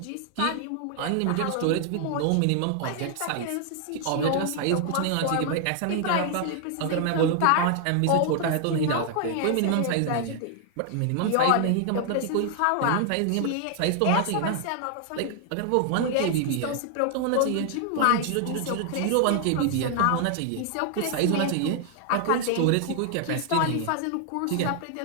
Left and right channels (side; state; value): both; different; correlation 0.00